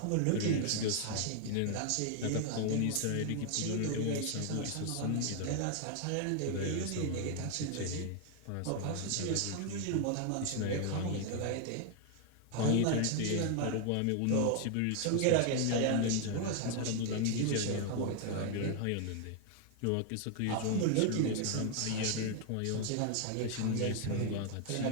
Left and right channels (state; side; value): different; both; correlation 0.00